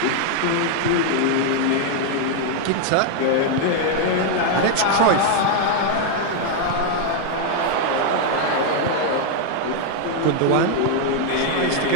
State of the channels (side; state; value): both; different; correlation 0.00